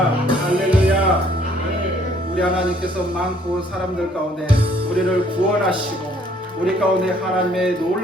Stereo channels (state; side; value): normal; both; correlation 0.62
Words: 할렐루야. 우리 하나님께서 많고 사람들 가운데 우리를 구원하시고 우리 가운데 하나님의